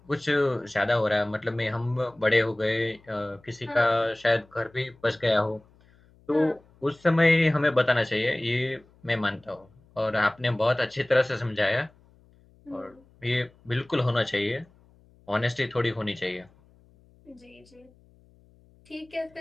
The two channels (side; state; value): left; noise; hum, 29 dB below the sound